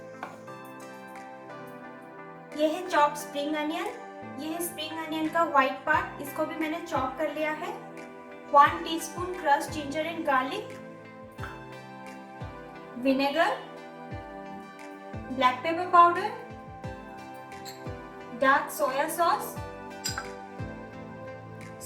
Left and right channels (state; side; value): identical; both; correlation 1.00